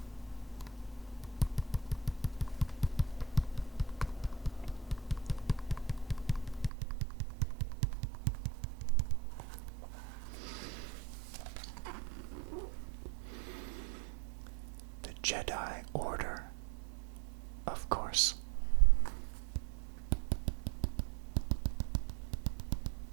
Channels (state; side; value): drops out; left; at 6.7 s